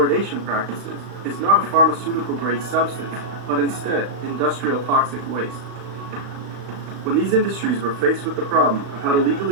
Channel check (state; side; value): late; left; 36 ms